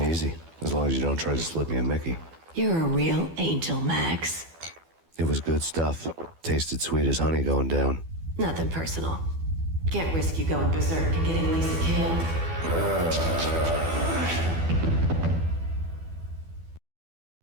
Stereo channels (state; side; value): late; left; 12 ms